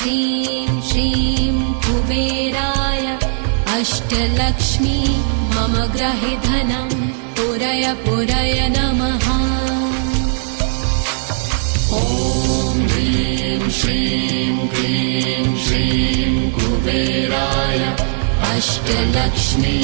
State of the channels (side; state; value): left; silent; 67 dB below the other